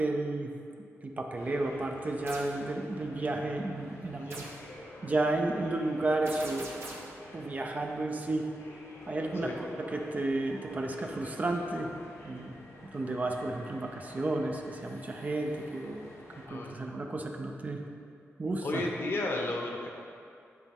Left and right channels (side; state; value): both; normal; correlation 0.87